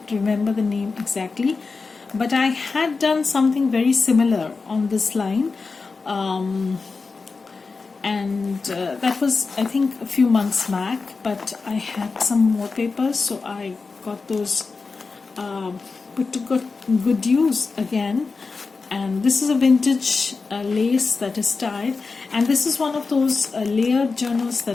remember the name exactly, but I had done something very similar on this line, and that was, I think, a few months back, but I had some more papers, so I got those put to good use again. And this is a vintage lace that is tied, and this is one of those layered journals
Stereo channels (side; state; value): right; quieter; 4.3 dB